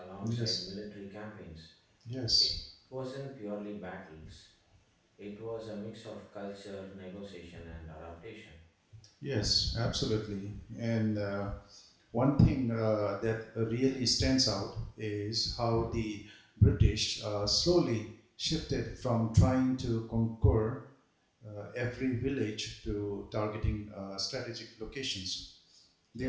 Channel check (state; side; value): identical; both; correlation 1.00